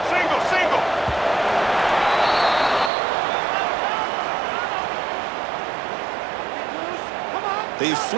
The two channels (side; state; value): left; drops out; at 2.9 s